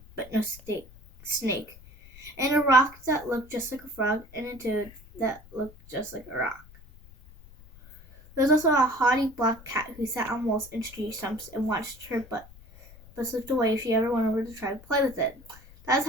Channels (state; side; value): noise; left; rumble, 21 dB below the sound